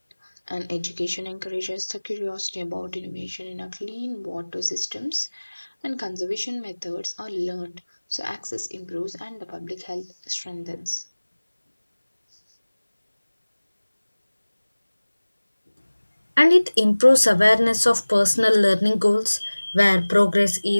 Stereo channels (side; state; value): both; inverted; correlation -1.00